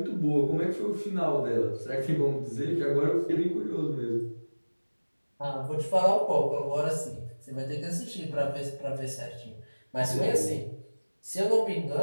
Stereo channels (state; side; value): inverted; both; correlation -1.00